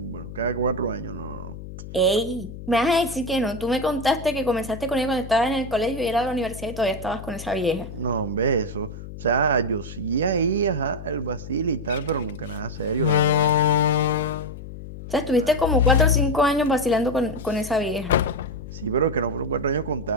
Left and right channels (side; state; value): left; noise; hum, 12 dB below the sound